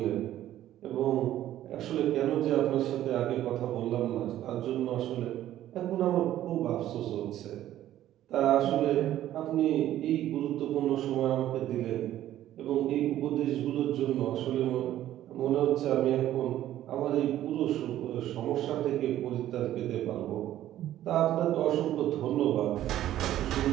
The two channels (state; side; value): quieter; left; 12.8 dB